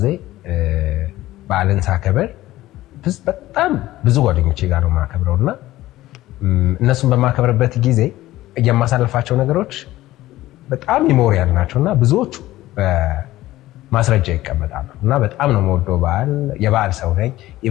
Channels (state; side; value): quieter; right; 16.1 dB